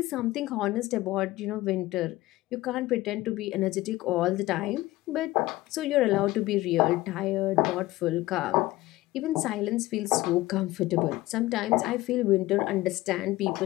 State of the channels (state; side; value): quieter; right; 18.1 dB